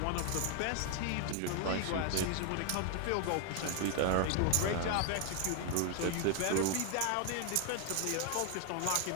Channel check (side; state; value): both; different; correlation 0.00